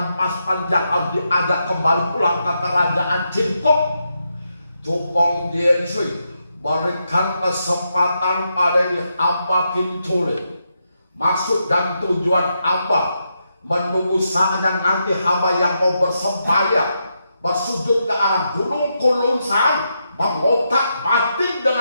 pasukan yang harus diajak kembali pulang ke kerajaan Jingkok. Tukong Jensoy, berikan kesempatan pada hamba Kintule. Maksud dan tujuan hamba menunggu saatnya nanti hamba yang mau bersembahyang bersujud ke arah gunung Kulunsan, mengotak batin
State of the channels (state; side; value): inverted; both; correlation -0.83